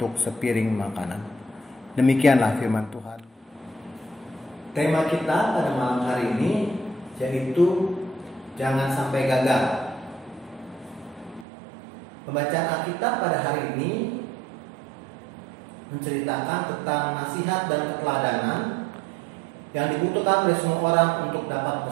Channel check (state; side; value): drops out; left; at 11.5 s